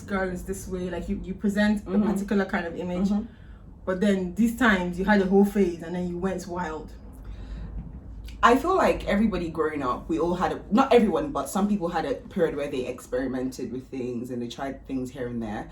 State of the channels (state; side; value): identical; both; correlation 1.00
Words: girl is this way, like you present a particular kind of image, but then these times you had a whole phase and then you went wild. I feel like everybody growing up, we all had not everyone, but some people had a period where they experimented with things and they tried things here and there.